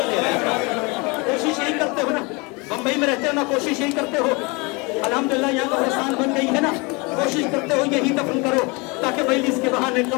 रह जाओ। कोशिश यही करते हो ना, बम्बई में रहते हो ना, कोशिश यही करते हो। अल्हम्दुलिल्लाह यहाँ कब्रिस्तान बन गई है ना, कोशिश करते हो यही दफन करो ताकि मजलिस के बहाने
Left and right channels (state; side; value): quieter; right; 27.9 dB